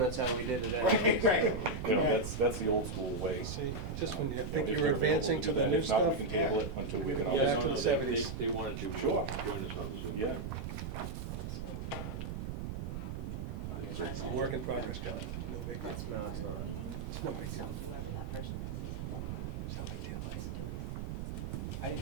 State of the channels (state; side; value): noise; right; rumble, 5 dB below the sound